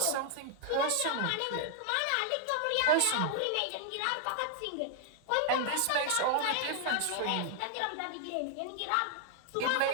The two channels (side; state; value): both; different; correlation 0.00